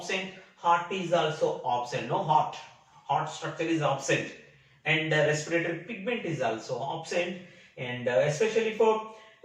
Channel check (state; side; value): identical; both; correlation 1.00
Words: Heart is also absent. No heart structure is absent, and respiratory pigment is also absent. And especially for